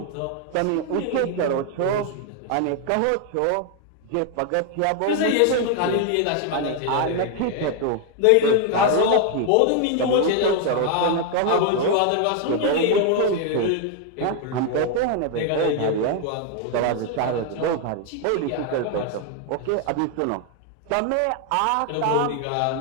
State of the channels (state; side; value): different; both; correlation 0.00